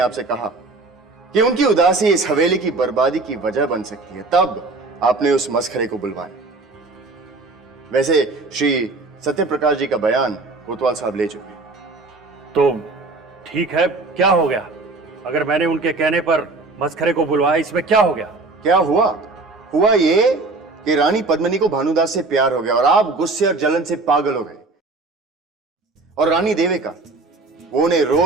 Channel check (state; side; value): quieter; left; 3.5 dB